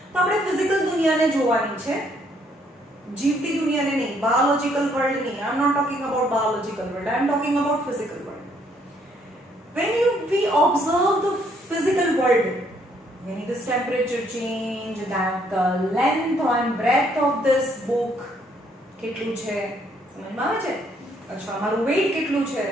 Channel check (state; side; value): normal; both; correlation 0.68